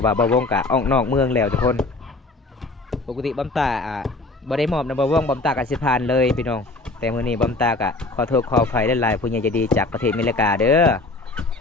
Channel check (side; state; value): right; quieter; 3.2 dB